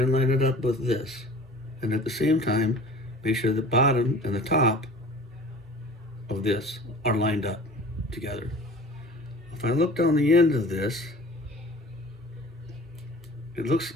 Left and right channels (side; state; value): both; normal; correlation 0.44